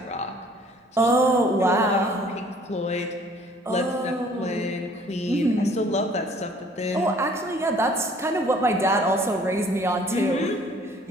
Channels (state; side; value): normal; both; correlation 0.56